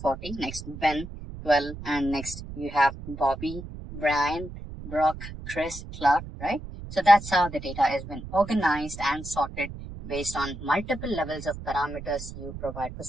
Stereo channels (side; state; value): right; noise; rumble, 11 dB below the sound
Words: Next Ben, 12, and next you have Bobby, Brian, Brock, Chris, Clark, right? So that's how the data has been organized and sorted based on multiple levels of parameters you provide for